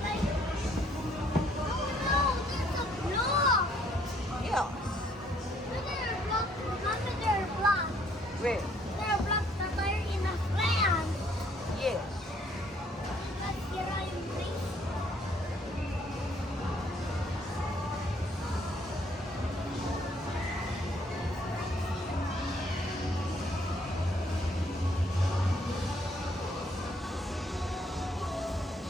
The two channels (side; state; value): both; normal; correlation 0.65